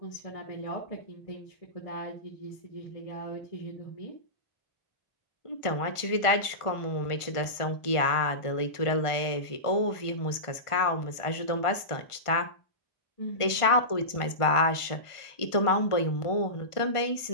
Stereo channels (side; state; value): right; late; 1.5 ms